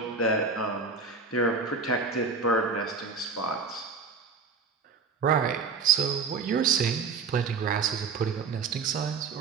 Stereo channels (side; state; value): left; quieter; 4.9 dB